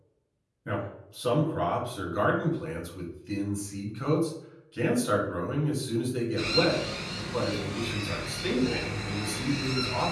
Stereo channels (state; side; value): identical; both; correlation 1.00